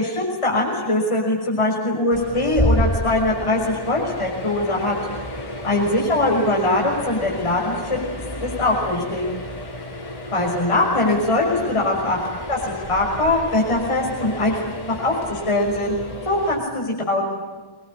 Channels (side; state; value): right; late; 1.1 ms